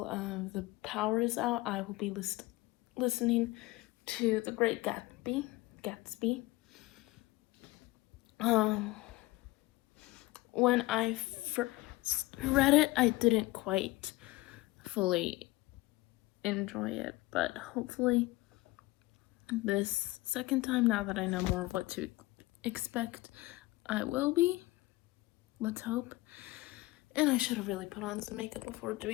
the power is out, I will be listening to The Great Gatsby. When I first read it, I didn't quite fully enjoy it, but hopefully this second time, now that I know more of what to expect, I will be. Let's hope. And I should have really put on some makeup before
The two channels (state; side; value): quieter; right; 20.1 dB